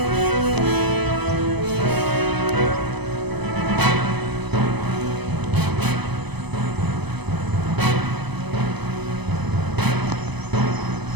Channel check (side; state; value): left; late; 0.99 ms